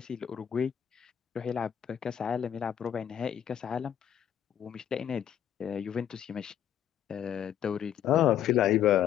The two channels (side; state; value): right; quieter; 10.0 dB